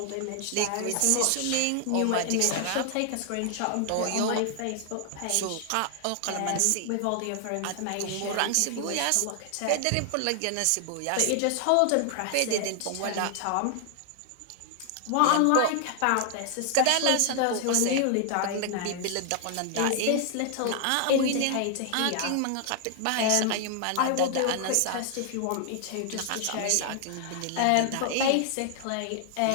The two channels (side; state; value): both; different; correlation 0.00